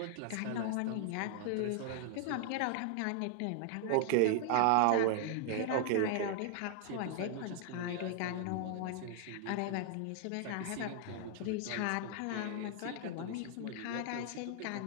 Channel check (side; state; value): both; different; correlation 0.00